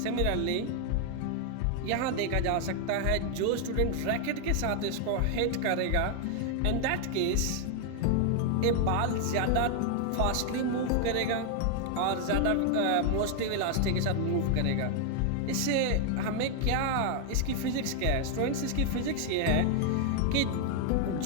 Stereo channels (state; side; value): different; both; correlation 0.00